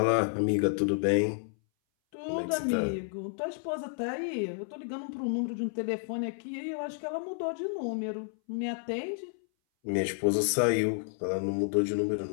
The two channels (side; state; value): right; silent; 57 dB below the other